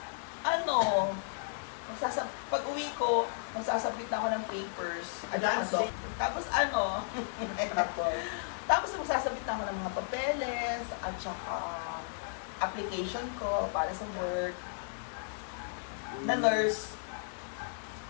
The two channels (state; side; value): silent; right; digital silence